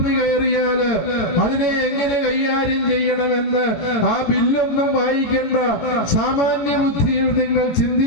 കയറിയാല് അതിനെ എങ്ങനെ കൈകാര്യം ചെയ്യണമെന്ന് ആ ബില്ലൊന്നും വായിക്കേണ്ട, സാമാന്യ ബുദ്ധിയിൽ നിങ്ങൾ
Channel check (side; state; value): right; late; 18 ms